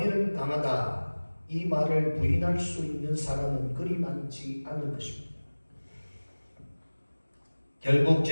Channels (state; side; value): inverted; both; correlation -1.00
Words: 강하다. 이 말을 부인할 수 있는 사람은 그리 많지 않을 것입니다. 결국